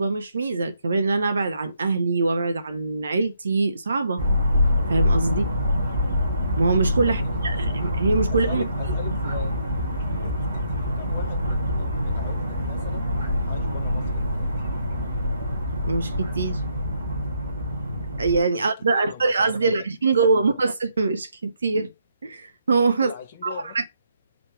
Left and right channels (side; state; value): both; inverted; correlation -0.75